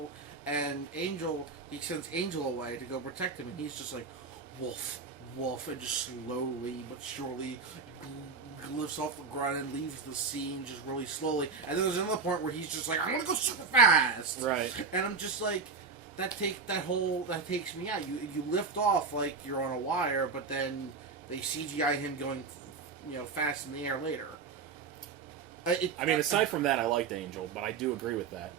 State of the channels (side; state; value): left; quieter; 4.9 dB